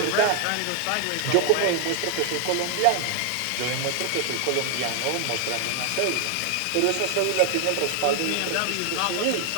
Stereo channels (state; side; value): different; both; correlation 0.00